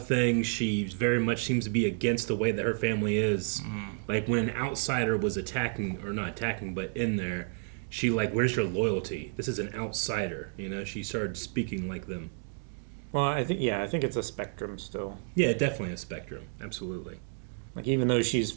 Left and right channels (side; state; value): left; silent; 55 dB below the other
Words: things. She very much seems to be against the way that her family is. Like when an outsider was not attacking, but in there, she like, where's your loyalty? This is an outsider. You know, she started speaking like them. Well, I think it's a spectrum still. Yeah, definitely a spectrum. Absolutely. Like, even though she's